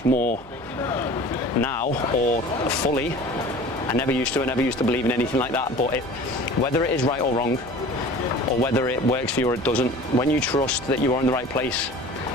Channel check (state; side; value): noise; left; hum, 24 dB below the sound